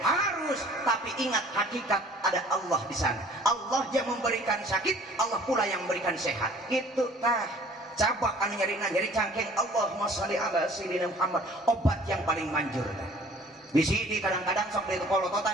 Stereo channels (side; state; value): both; normal; correlation 0.52